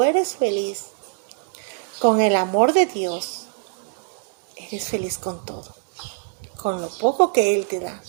eres feliz con el amor de Dios, eres feliz con todo. Con lo poco que Él te da.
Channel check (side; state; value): left; silent; 63 dB below the other